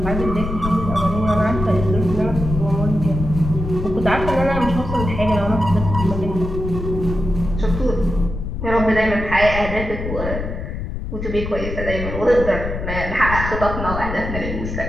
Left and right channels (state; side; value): noise; left; rumble, 5 dB below the sound